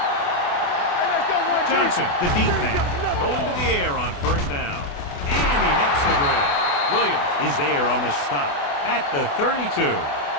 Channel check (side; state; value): right; late; 28 ms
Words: Johnson, the deep man, going to the air on first down. And he makes the grab. Williams is there on the stop at the 32.